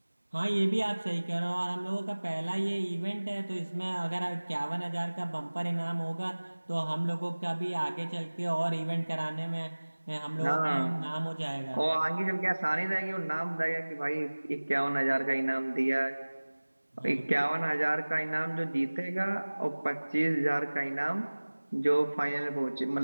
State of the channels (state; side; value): inverted; both; correlation -1.00